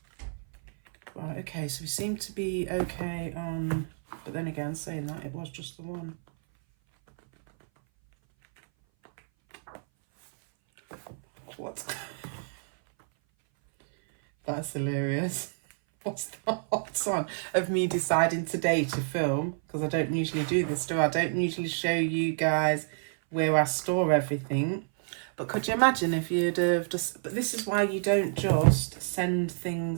Right, okay, so we seem to be okay on, but then again, saying that, it was just the one. what? That's hilarious. What's the hot on of me deciding today to film? Because I don't usually do this, do I? I don't usually show you guys where I store everything. But could you imagine if you'd have just... But this is why you don't just send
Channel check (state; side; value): silent; left; 57 dB below the other